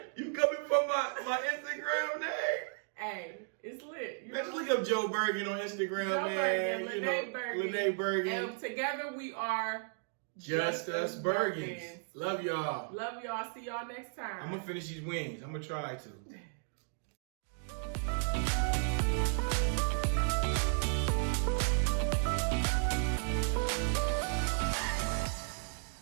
You coming from my Instagram name? Hey, it's lit. You Let's know? look up Joe Bergen on Instagram, Joe man. Bergen, Lene Bergen. Bergen. And together we are Just Us Bergens. Love y'all. Love y'all. See y'all next time. I'm gonna finish these wings. I'm gonna try to.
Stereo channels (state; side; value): silent; left; 55 dB below the other